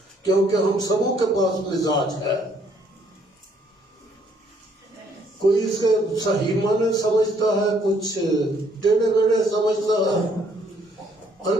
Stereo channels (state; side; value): normal; both; correlation 0.66